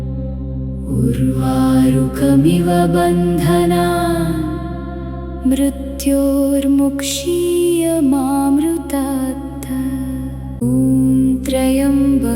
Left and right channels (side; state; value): both; identical; correlation 1.00